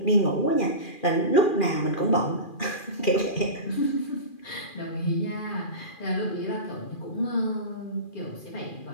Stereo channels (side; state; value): right; late; 2.4 ms